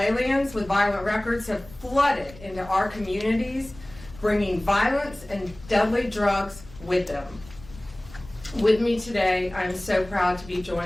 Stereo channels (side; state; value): left; noise; rumble, 20 dB below the sound